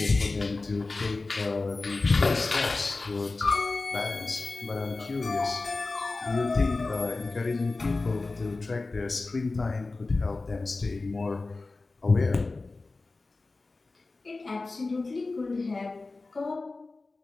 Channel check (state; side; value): quieter; right; 3.5 dB